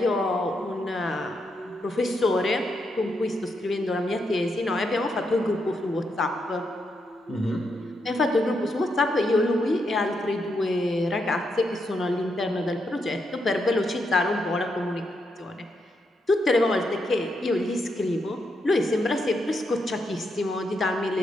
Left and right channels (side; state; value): both; normal; correlation 0.81